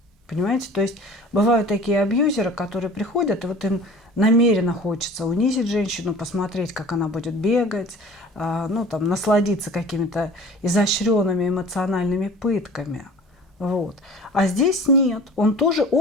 Понимаете? То есть бывают такие абьюзеры, которые приходят, и вот им намеренно хочется унизить женщину, посмотреть, как она будет бегать, ну, там, насладиться какими-то изощренными эмоциональными пытками. Вот. А здесь нет. Он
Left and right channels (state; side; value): normal; both; correlation 0.43